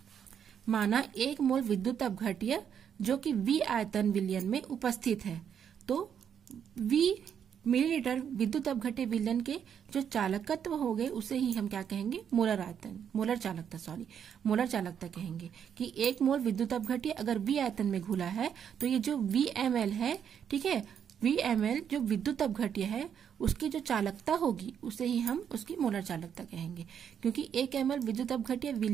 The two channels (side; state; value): left; quieter; 8.3 dB